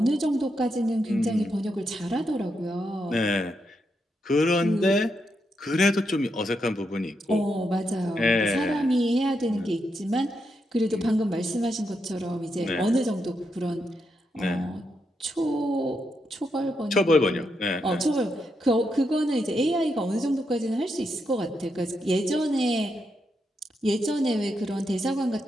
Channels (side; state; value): both; normal; correlation 0.82